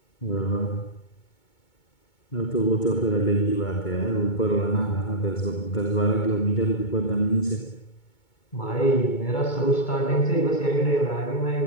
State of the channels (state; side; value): late; right; 2.2 ms